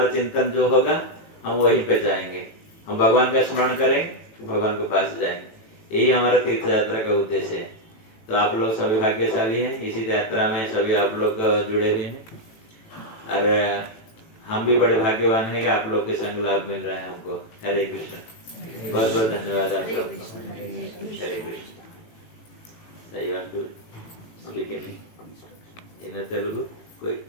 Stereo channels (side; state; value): right; late; 18 ms